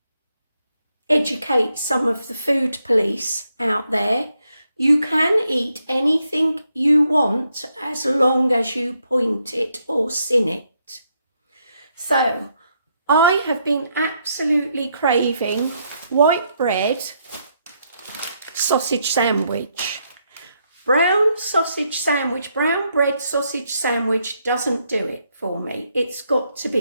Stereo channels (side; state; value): both; inverted; correlation -0.77